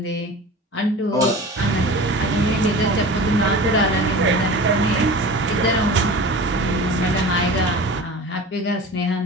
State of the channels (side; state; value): both; normal; correlation 0.36